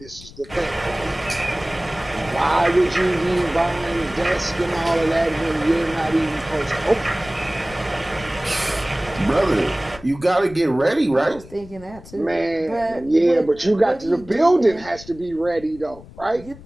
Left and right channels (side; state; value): left; noise; rumble, 19 dB below the sound